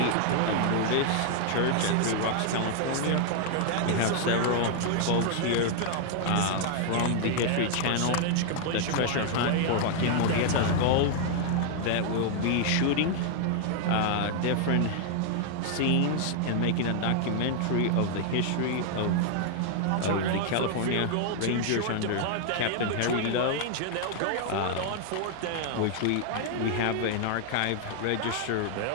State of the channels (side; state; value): both; different; correlation 0.00